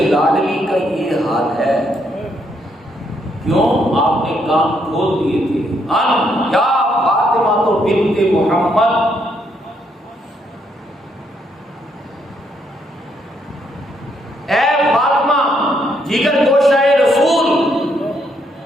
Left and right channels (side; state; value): both; normal; correlation 0.74